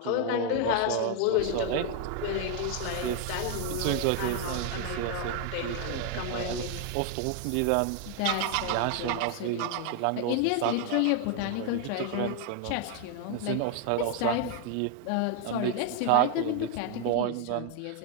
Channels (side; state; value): both; different; correlation 0.00